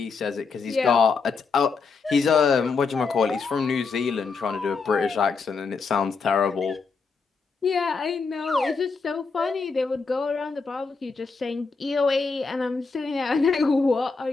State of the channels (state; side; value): quieter; right; 4.8 dB